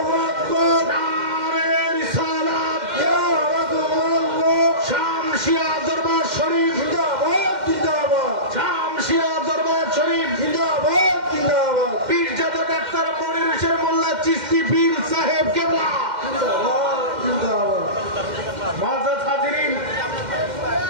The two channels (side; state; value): left; late; 2.1 ms